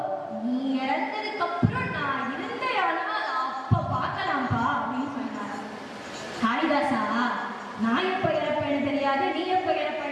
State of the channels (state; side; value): identical; both; correlation 1.00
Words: நீ இறந்ததுக்கு அப்புறம் நான் இருந்தேனா அப்ப பார்க்கலாம்ப்பா அப்படின்னு சொன்னார். காளிதாசா, நான் எப்ப இறப்பேன்னு தெரியாது, நீ எப்ப